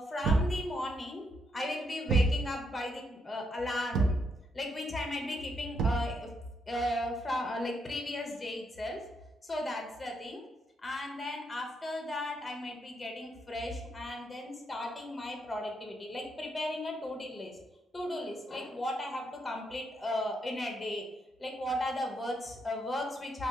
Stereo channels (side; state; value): both; normal; correlation 0.78